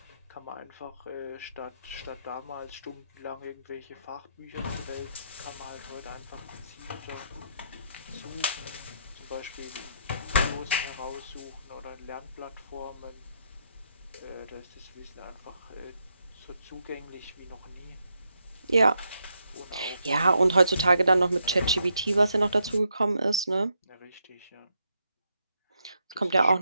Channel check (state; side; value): inverted; both; correlation -0.79